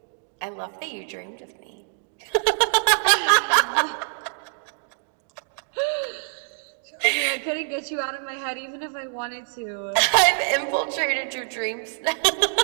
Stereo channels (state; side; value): silent; left; 62 dB below the other